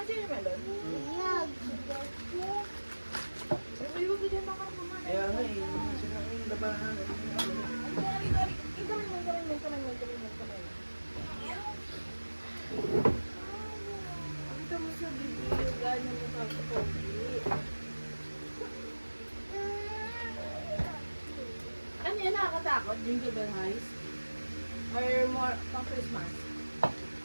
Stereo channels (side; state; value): both; inverted; correlation -1.00